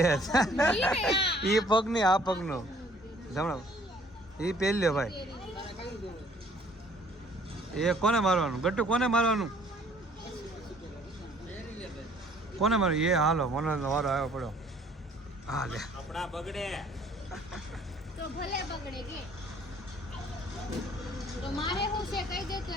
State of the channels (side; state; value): both; normal; correlation 0.58